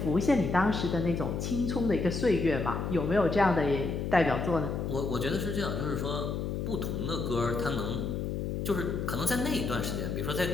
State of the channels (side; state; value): left; noise; hum, 2 dB below the sound